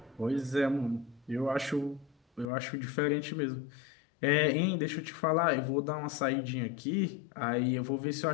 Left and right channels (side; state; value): right; drops out; at 2.5 s